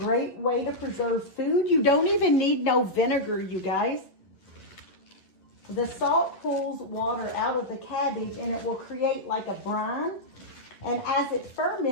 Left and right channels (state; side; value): late; right; 11 ms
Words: way to preserve food. You don't even need no vinegar, you guys. The salt pulls water out of the cabbage and it will create like a brine. And as it